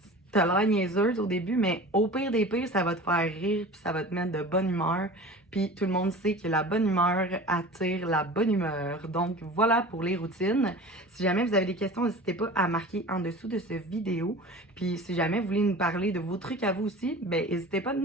t'as l'air niaiseuse au début, mais au pire des pires, ça va te faire rire, puis ça va te mettre de bonne humeur. Puis tout le monde sait que la bonne humeur attire la bonne humeur. Donc voilà pour les routines. Si jamais vous avez des questions, n'hésitez pas à marquer en dessous de cette vidéo. Puis si jamais vous voulez nous parler de vos trucs à vous aussi, ben n'hésitez pas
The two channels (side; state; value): both; normal; correlation 0.38